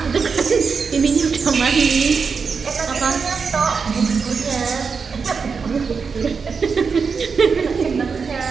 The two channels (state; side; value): quieter; left; 5.4 dB